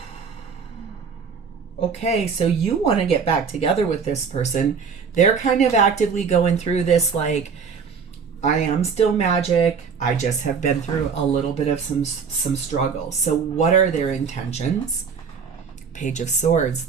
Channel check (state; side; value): quieter; left; 5.8 dB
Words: Okay, so you want to get back together with this person. They're kind of actively going through this, like, I am still magic. I just have been through a little bit of some struggle. So what are their intentions? Page of Swords.